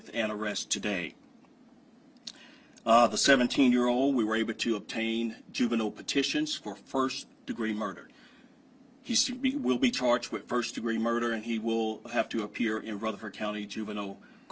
an arrest today. The 17-year-old, we were able to obtain juvenile petitions for first-degree murder. He will be charged with first-degree murder, and he will have to appear in Rutherford County Juvenile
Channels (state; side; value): identical; both; correlation 1.00